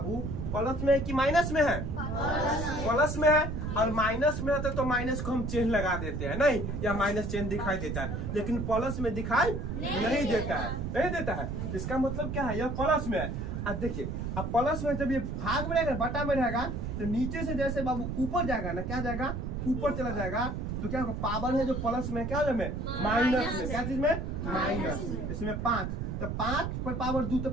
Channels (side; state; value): right; noise; rumble, 3 dB below the sound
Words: प्लस में है कि माइनस में है? प्लस में है। और माइनस में रहता तो माइनस को हम चिन्ह लगा देते हैं नहीं, या माइनस चिन्ह दिखाई देता है, लेकिन प्लस में दिखाई नहीं देता है, नहीं देता है। इसका मतलब क्या है? यह प्लस में है। अब देखिए, अब प्लस में जब ये भाग में रहेगा, बटा में रहेगा, तो नीचे से जैसे बाबू ऊपर जाएगा ना, क्या जाएगा? ऊपर चला जाएगा, तो क्या होगा? पावर है जो प्लस में, क्या है माइनस में। क्या चीज में? माइनस। इसमें 5, तो 5 पर पावर 2 तो